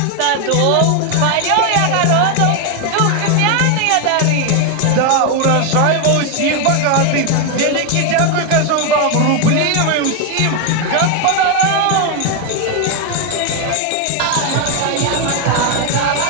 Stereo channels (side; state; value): both; different; correlation 0.01